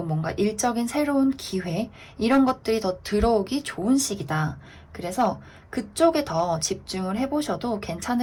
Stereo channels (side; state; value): both; identical; correlation 1.00